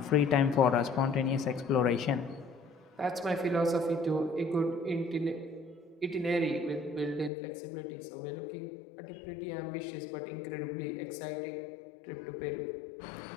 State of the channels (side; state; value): right; drops out; at 7.3 s